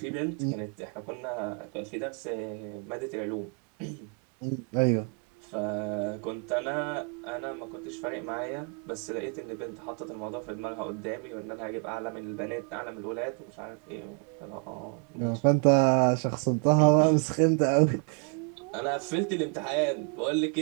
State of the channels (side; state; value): left; quieter; 38.8 dB